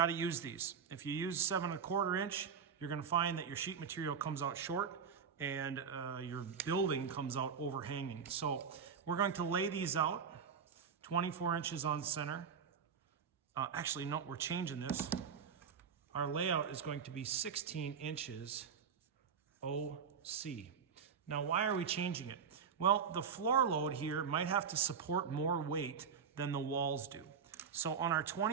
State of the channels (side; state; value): left; quieter; 6.7 dB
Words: to use these. If you use 7 1/4 inch, you're going to find that your sheet material comes out short and your building comes out overhanging. So we're going to lay these out 24 inches on center. Actually, no, we're changing this. Our layout is going to be 16 inches OC. Now, why are we changing it? Well, the floor load here might have to support more weight than the walls do. So on our